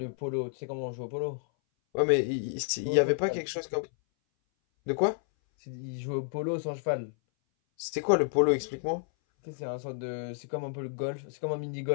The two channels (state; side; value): silent; right; 57 dB below the other